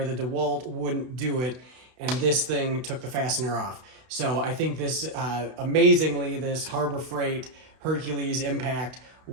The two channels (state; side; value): late; left; 32 ms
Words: the DeWalt wouldn't do it, and this thing took the fastener off. So I think this, amazingly, this Harbor Freight Hercules Impact